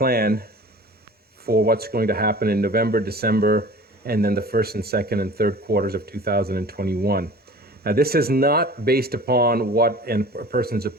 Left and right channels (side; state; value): both; normal; correlation 0.42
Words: for what's going to happen in November, December, and then the first and second and third quarters of 2021. Now, this is not based upon what a person's